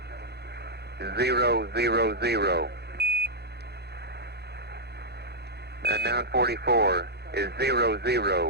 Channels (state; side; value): late; left; 0.48 ms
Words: 000. And 944 is